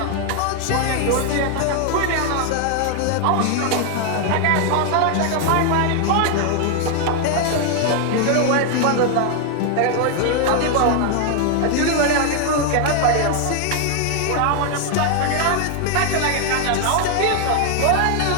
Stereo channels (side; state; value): both; different; correlation 0.00